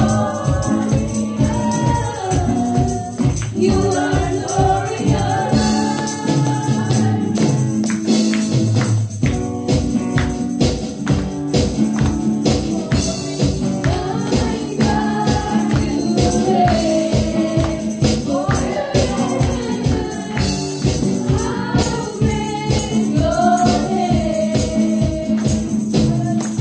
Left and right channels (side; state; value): both; identical; correlation 1.00